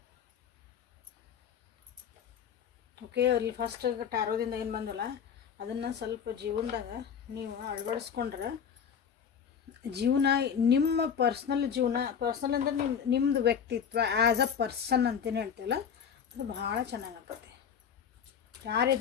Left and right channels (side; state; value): right; quieter; 7.5 dB